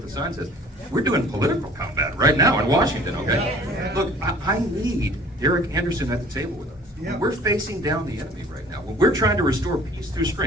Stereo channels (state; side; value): normal; both; correlation 0.50